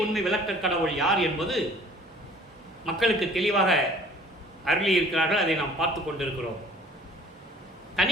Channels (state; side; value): normal; both; correlation 0.51